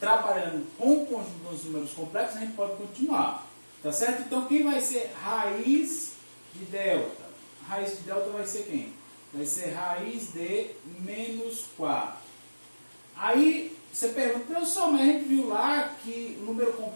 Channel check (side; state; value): both; inverted; correlation -1.00